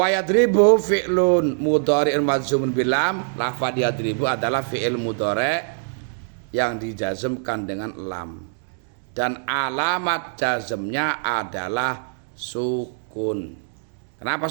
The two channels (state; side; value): silent; left; digital silence